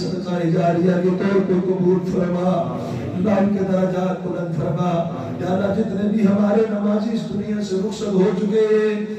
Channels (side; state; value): both; identical; correlation 1.00